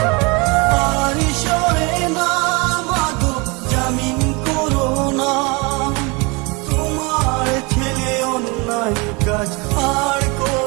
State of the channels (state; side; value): quieter; left; 28.0 dB